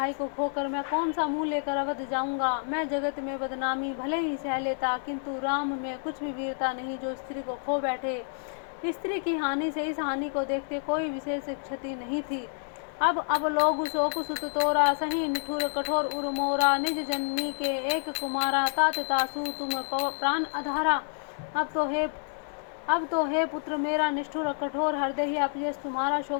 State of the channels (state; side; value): silent; right; digital silence